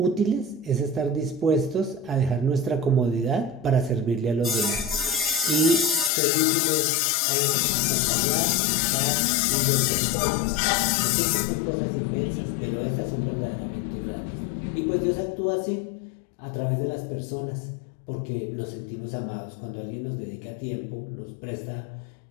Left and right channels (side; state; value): right; drops out; at 6.1 s